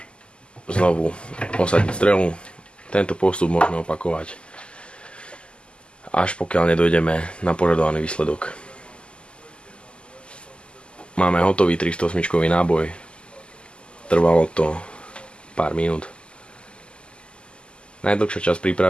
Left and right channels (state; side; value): late; right; 0.051 ms